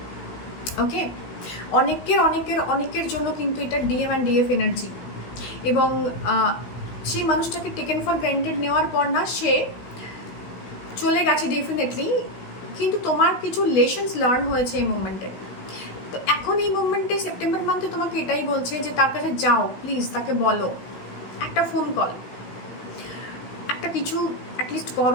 ওকে, অনেকের জন্য কিন্তু এটা ডিএম অ্যান্ড ডিএফ এনার্জি, এবং সেই মানুষটাকে টেকেন ফর গ্রান্টেড নেওয়ার পর না সে চলে গেছে ডেফিনেটলি, কিন্তু তোমার কিছু লেসন্স লার্ন হয়েছে এই মুভমেন্টে। তো এখন এই মুভমেন্টে সেপ্টেম্বর মান্থে তোমাকে এটাই বলছে যে তার কাছে যাও, প্লিজ তাকে বলো, একটা ফোন কল, একটা কিছু অ্যাটলিস্ট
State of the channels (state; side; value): late; right; 16 ms